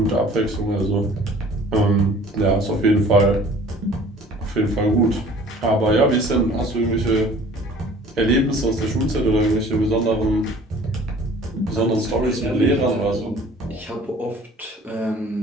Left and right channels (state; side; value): normal; both; correlation 0.50